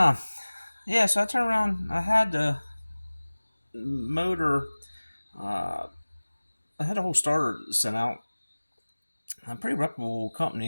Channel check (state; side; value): inverted; both; correlation -1.00